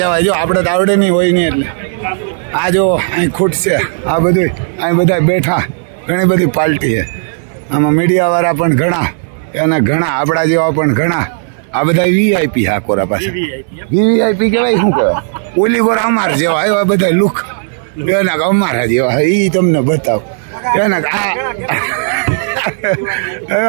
જો આપણે તો આવડે નહીં હોય નહીં એટલે. આ જો અહીં ખૂટશે આ બધું. અહીં બધા બેઠા, ઘણી બધી પાર્ટી છે આમાં. મીડિયાવાળા પણ ઘણા, અને ઘણા આપણા જેવા પણ ઘણા. આ બધા વીઆઈપી હા કોરા પાસે. વીઆઈપી કહેવાય શું કહેવાય? ઓલી કોરા અમાર જેવા એવા બધા લુક એના અમારા જેવા. એ તમને બતાવો એના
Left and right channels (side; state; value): left; silent; digital silence